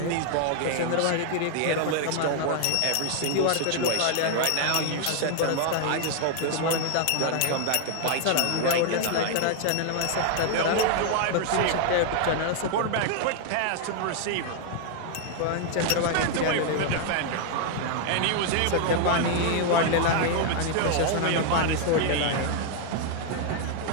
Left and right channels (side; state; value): both; different; correlation 0.00